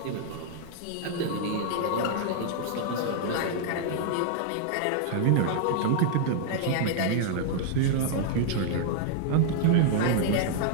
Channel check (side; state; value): both; different; correlation -0.01